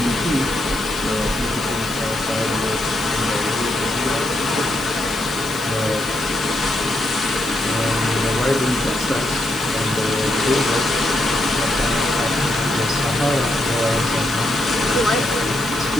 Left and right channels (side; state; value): left; noise; hiss, 14 dB below the sound